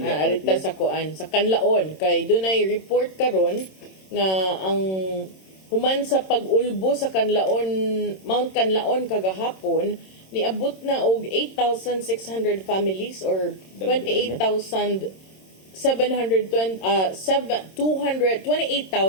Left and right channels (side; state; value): right; late; 26 ms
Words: nga arita sa kuan sa Kanlaon kay dunay report karon nga ang human sa pag-ulbo sa Kanlaon Mount Kanlaon kagahapon niabot na og 8,600 families or 28,272